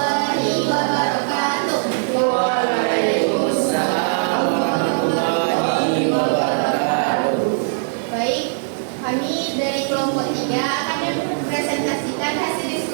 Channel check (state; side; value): silent; left; digital silence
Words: wabarakatuh. Waalaikumsalam warahmatullahi wabarakatuh. Baik, kami dari kelompok 3 akan mempresentasikan hasil